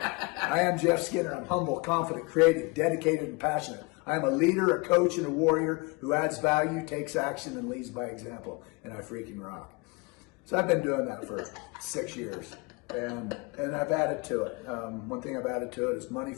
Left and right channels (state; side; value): quieter; right; 27.3 dB